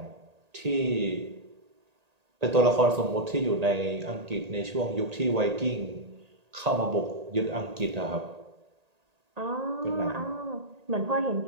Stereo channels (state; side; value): late; left; 1.8 ms